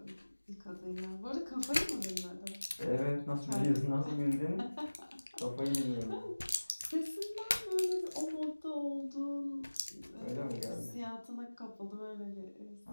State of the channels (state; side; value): inverted; both; correlation -1.00